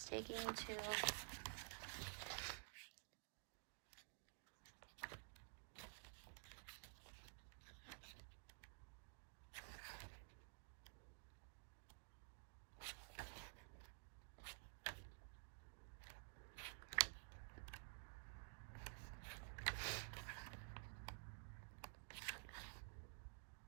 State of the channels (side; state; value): left; silent; digital silence